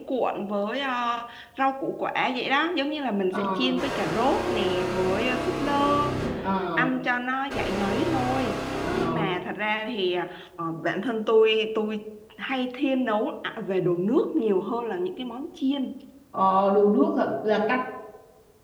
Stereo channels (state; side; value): identical; both; correlation 1.00